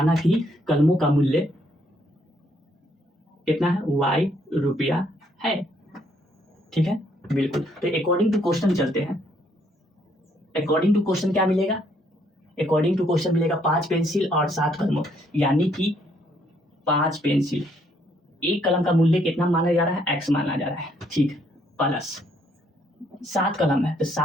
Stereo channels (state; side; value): normal; both; correlation 0.69